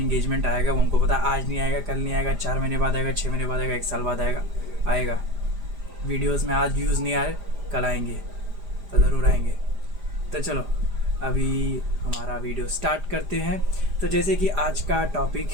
आएगा, वो हमको पता, आज नहीं आएगा, कल नहीं आएगा, 4 महीने बाद आएगा, 6 महीने बाद आएगा, 1 साल बाद आएगा। वीडियोस में आज व्यूज़ नहीं आए, कल आएंगे तो ज़रूर आएंगे। तो चलो अभी हमारा वीडियो स्टार्ट करते हैं। तो जैसे कि आज का टॉपिक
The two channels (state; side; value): late; left; 5.0 ms